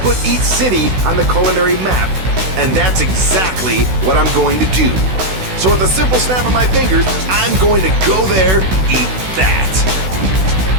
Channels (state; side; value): late; left; 16 ms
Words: put each city on the culinary map. And that's exactly what I'm going to do. So with a simple snap of my fingers, I'm going to go there, eat that.